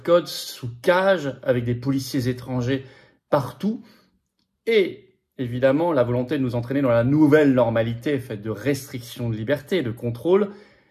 code, sous cage, avec des policiers étrangers partout. Et évidemment, la volonté de nous entraîner dans la nouvelle normalité faite de restrictions de liberté, de contrôle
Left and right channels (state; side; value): identical; both; correlation 1.00